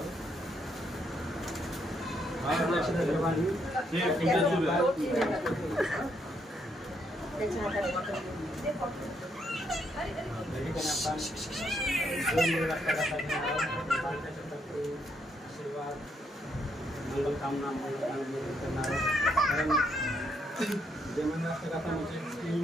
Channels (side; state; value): both; normal; correlation 0.75